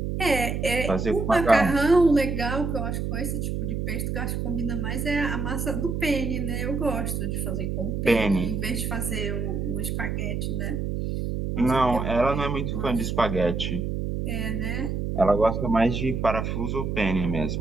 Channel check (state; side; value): noise; right; hum, 2 dB below the sound